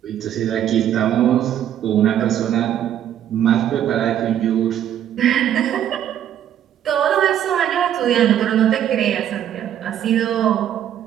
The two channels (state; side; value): quieter; left; 10.6 dB